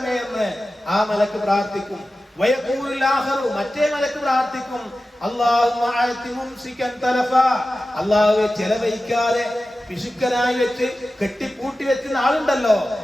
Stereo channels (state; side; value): normal; both; correlation 0.94